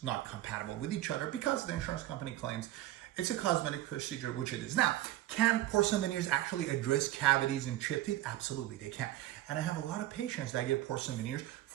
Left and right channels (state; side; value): quieter; left; 15.2 dB